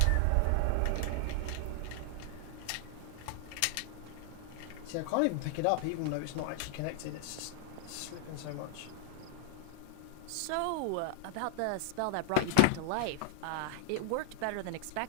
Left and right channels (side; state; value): both; different; correlation 0.00